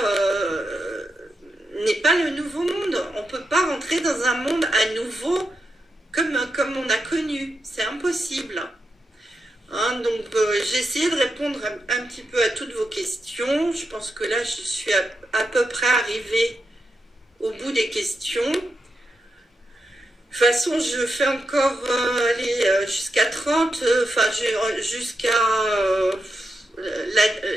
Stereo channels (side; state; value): both; normal; correlation 0.86